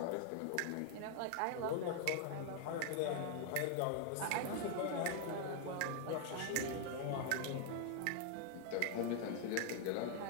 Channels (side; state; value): both; different; correlation 0.00